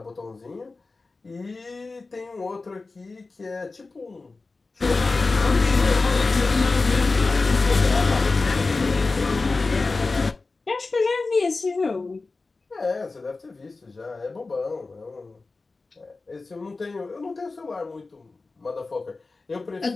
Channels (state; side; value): quieter; right; 3.7 dB